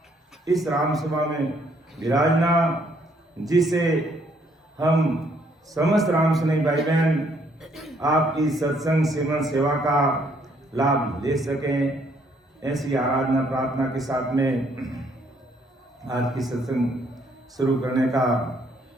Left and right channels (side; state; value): both; normal; correlation 0.67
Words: इस राम सभा में विराजना, जिससे हम समस्त राम सनी भाई बहन आपकी सत्संग सेवन सेवा का लाभ ले सकें, ऐसी आराधना प्रार्थना के साथ में आज की सत्संग शुरू करने का